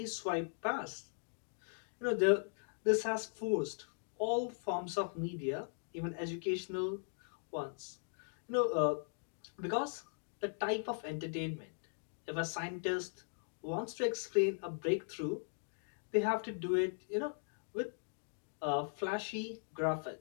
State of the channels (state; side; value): silent; right; digital silence